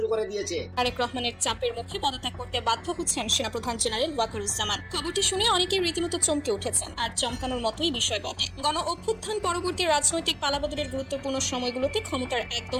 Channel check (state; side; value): identical; both; correlation 1.00